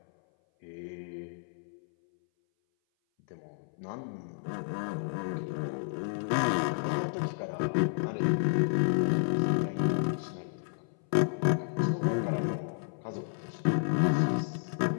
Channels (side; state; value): right; silent; 57 dB below the other